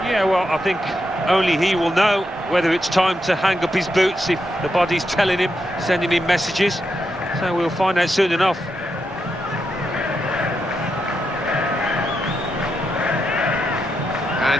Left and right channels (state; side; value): normal; both; correlation 0.84